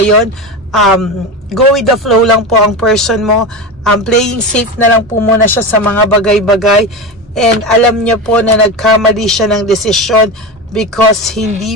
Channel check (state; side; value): normal; both; correlation 0.22